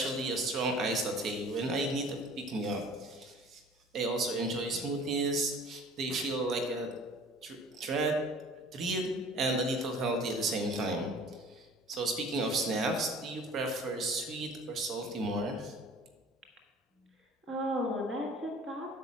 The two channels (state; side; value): normal; both; correlation 0.47